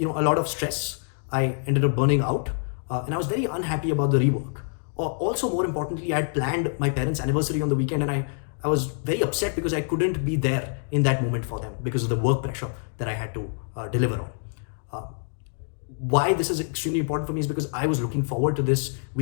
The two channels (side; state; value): right; silent; digital silence